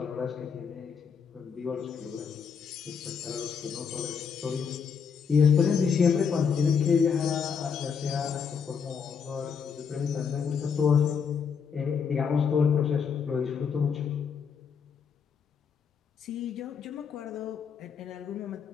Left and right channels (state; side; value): quieter; right; 6.4 dB